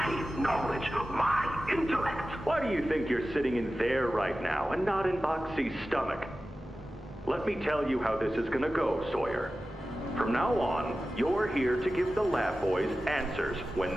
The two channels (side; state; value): both; normal; correlation 0.95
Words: knowledge, my intellect. Why do you think you're sitting in there right now and not in Boxy's stomach? Let me tell you how this is gonna go, Sawyer. From now on, you're here to give the lab boys answers when